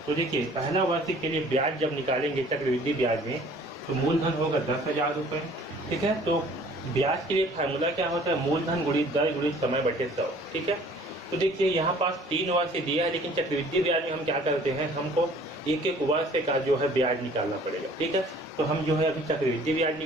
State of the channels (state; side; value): normal; both; correlation 0.53